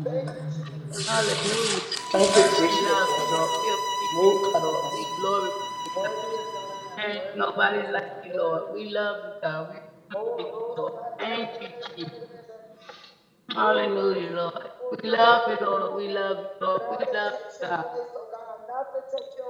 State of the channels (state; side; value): identical; both; correlation 1.00